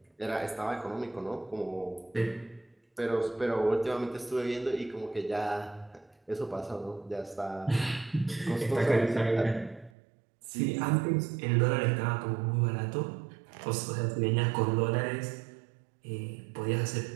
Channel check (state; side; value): drops out; left; at 9.9 s